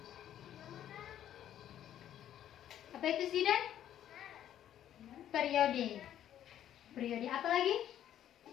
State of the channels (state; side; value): quieter; right; 11.0 dB